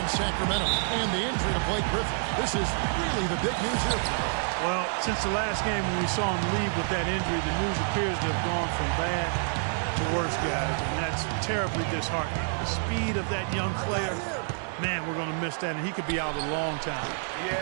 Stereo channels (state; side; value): silent; left; 59 dB below the other